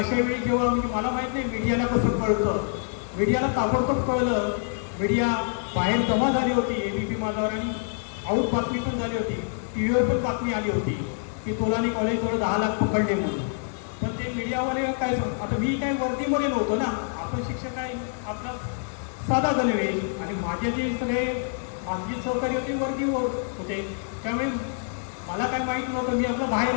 वेळी जेव्हा म्हणजे मला माहीत नाही मीडियाला कसं कळतं. मीडियाला ताबडतोब कळलं. मीडिया बाहेर जमा झाली होती ABP माझावर आणि आऊट बातमी पण झाली होती. TV पण बातमी आली होती की तोलानी कॉलेजवर 10 लाख पकडले म्हणून. पण ते मीडियावाले काय आता मी काय वर्दीमध्ये नव्हतो ना. आपण शिक्षक आहे आपला साधा गणवेश. आणि माझे जे सगळे माझी सहकारी होते वर्दीवर होते. त्यामुळे मला काय माहीत नव्हतं. मी आपलं बाहेर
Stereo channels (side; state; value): right; silent; 61 dB below the other